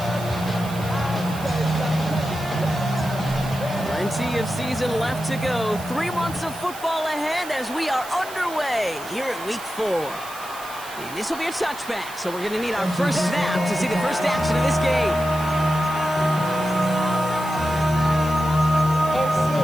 Plenty of season left to go. 3 months of football ahead as we are underway here at Week 4. And this will be a touchback, so we're going to need our first snap to see the first action of this game.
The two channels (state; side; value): noise; right; hiss, 15 dB below the sound